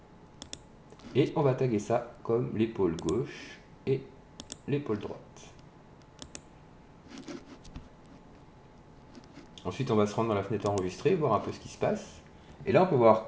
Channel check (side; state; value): both; identical; correlation 1.00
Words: et on va taguer ça comme l'épaule gauche et l'épaule droite. Ensuite, on va se rendre dans la fenêtre enregistrée, voir un peu ce qui se passe. Et là, on peut voir